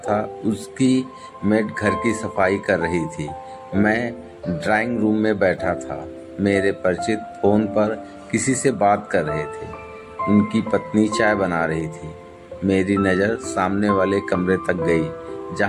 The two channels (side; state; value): both; identical; correlation 1.00